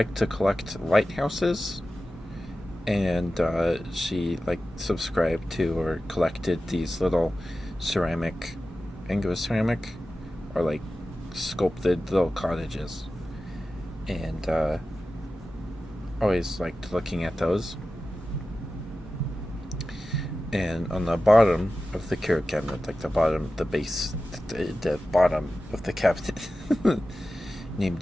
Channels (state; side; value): normal; both; correlation 0.94